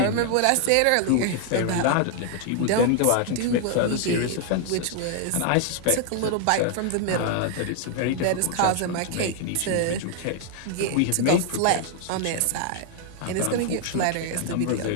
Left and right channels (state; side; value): different; both; correlation 0.00